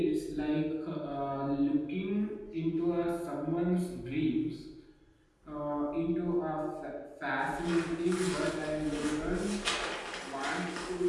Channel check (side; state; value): both; identical; correlation 1.00